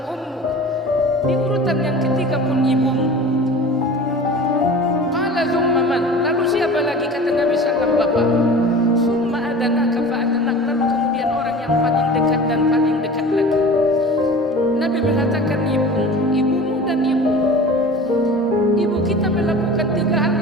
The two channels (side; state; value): both; normal; correlation 0.38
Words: ummuk, di urutan yang ketiga pun ibumu. Qala thumma man? Lalu siapa lagi? Kata Nabi Sallam, bapak. Summa adanaka fa adanak. Lalu kemudian orang yang paling dekat dan paling dekat lagi. Nabi mengatakan ibumu dan ibu. Ibu kita melakukan 3 hal